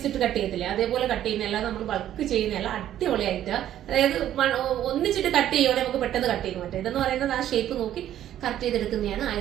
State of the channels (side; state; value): left; quieter; 11.7 dB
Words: ഇട്ട് കട്ട് ചെയ്യത്തില്ലേ, അതേപോലെ കട്ട് ചെയ്യുന്നതല്ല, നമ്മൾ ബൾക്ക് ചെയ്യുന്നതല്ല. അടിപൊളിയായിട്ട്, അതായത് ഒന്നിച്ചിട്ട് കട്ട് ചെയ്യുവാണെങ്കിൽ നമുക്ക് പെട്ടെന്ന് കട്ട് ചെയ്യാൻ പറ്റും. ഇതെന്ന് പറയുന്നത് ആ ഷേപ്പ് നോക്കി കറക്റ്റ് ചെയ്തെടുക്കുന്നതാണ്.